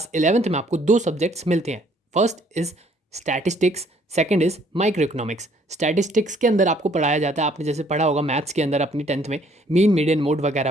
11th में आपको 2 सब्जेक्ट्स मिलते हैं। First is statistics, second is micro economics. Statistics के अंदर आपको पढ़ाया जाता है, आपने जैसे पढ़ा होगा मैथ्स के अंदर अपनी 10th में, मीन, मीडियन, मोड वगैरह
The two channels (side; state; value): both; normal; correlation 0.63